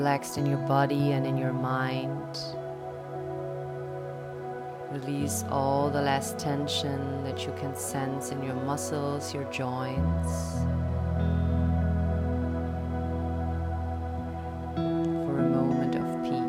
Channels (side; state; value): both; identical; correlation 1.00